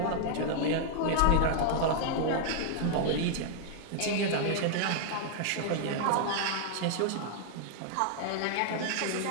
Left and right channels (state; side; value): different; both; correlation 0.00